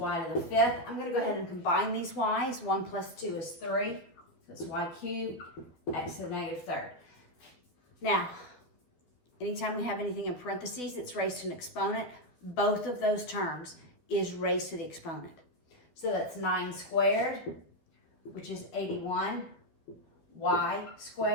to the 5th. I'm going to go ahead and combine these y's. 1 plus 2 is 3. So it's y cubed, x to the negative 3rd. Now, anytime we have anything in parentheses that's raised to an exponent, both of those terms is raised to the exponent. So that's 9 squared, which is 81, y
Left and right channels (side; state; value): right; late; 12 ms